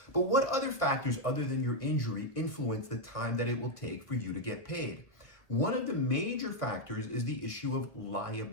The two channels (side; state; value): right; late; 1.3 ms